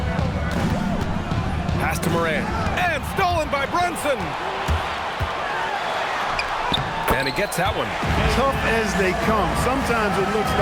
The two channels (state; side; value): identical; both; correlation 1.00